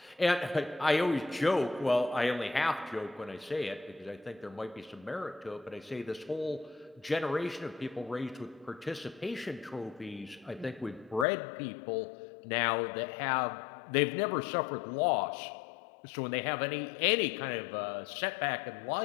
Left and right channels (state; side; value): drops out; right; at 11.2 s